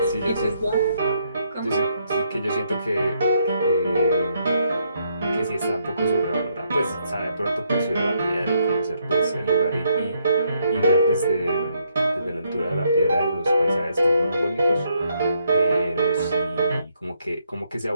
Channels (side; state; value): both; inverted; correlation -0.74